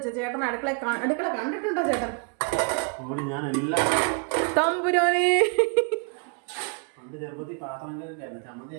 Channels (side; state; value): left; quieter; 38.0 dB